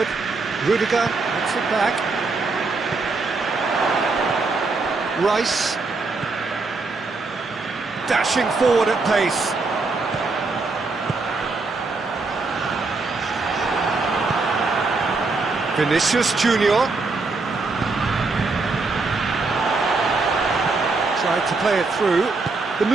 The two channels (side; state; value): left; quieter; 3.8 dB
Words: Rudiger gets it back. Rice dashing forward at pace. Vinicius Junior tried to play it through. The